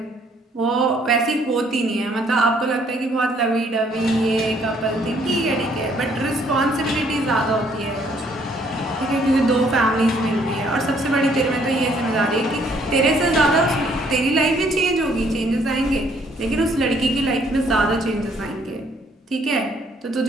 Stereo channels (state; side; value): normal; both; correlation 0.65